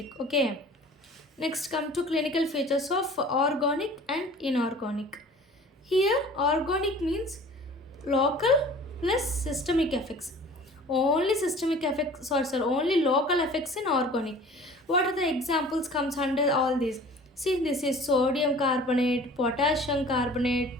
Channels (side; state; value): both; normal; correlation 0.46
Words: Okay. Next, come to clinical features of organic and inorganic. Here, organic means local plus systemic effects. Only systemic effects, only local effects in organic. What are the examples comes under all these? See, this is sodium carbonate, potassium